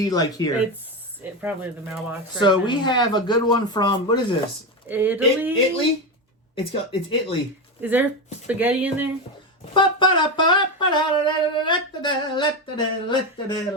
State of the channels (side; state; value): both; normal; correlation 0.15